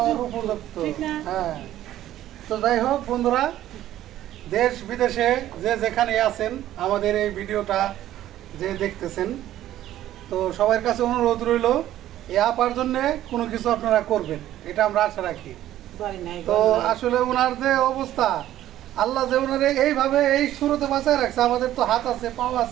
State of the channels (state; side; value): quieter; left; 13.1 dB